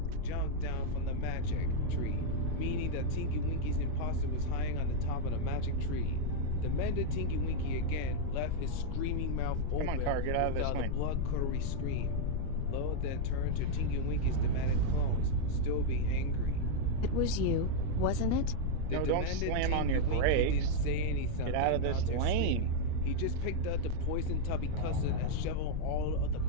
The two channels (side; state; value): both; different; correlation 0.00